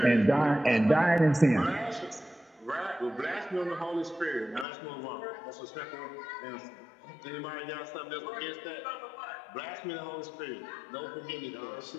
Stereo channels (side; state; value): right; drops out; at 4.7 s